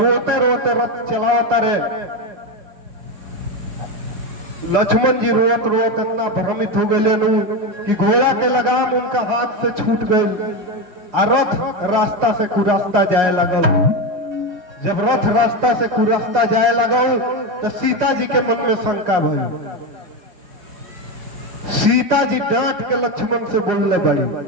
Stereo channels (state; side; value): late; left; 5.5 ms